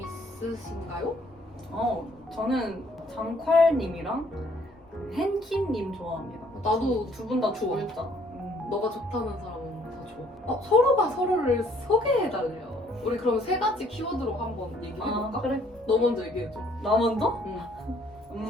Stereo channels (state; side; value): normal; both; correlation 0.62